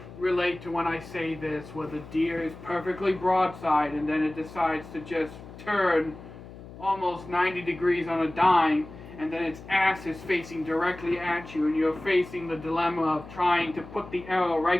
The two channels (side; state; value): left; noise; hum, 16 dB below the sound